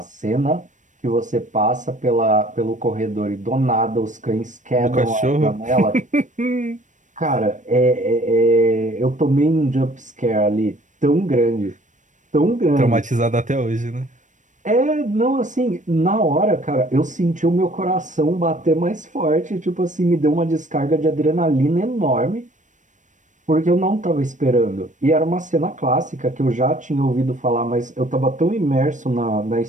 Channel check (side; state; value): left; late; 0.36 ms